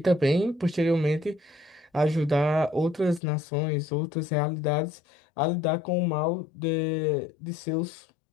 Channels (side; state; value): right; drops out; at 3.2 s